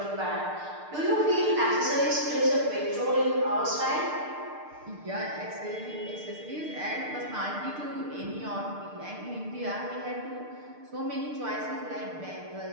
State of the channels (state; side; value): late; left; 6.6 ms